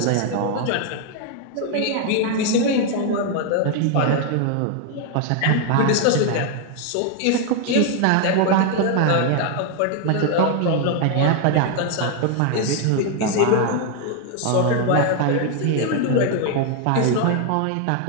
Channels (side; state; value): both; different; correlation 0.00